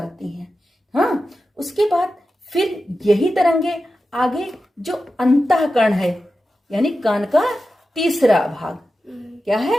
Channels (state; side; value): normal; both; correlation 0.92